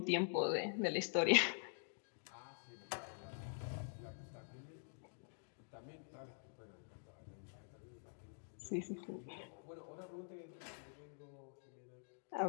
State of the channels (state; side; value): silent; right; digital silence